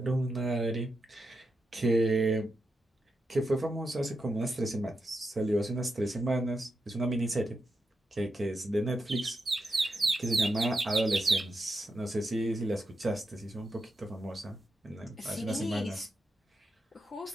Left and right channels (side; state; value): both; normal; correlation 0.86